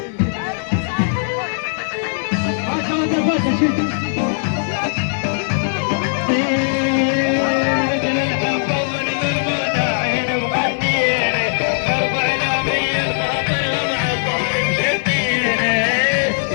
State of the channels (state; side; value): silent; right; 67 dB below the other